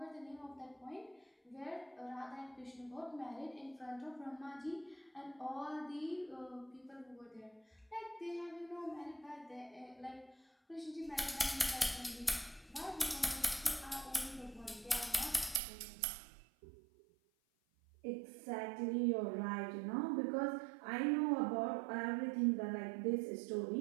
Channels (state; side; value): drops out; left; at 15.6 s